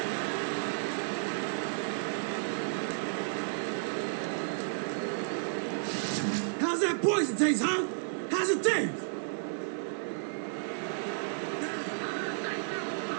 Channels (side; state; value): left; silent; 56 dB below the other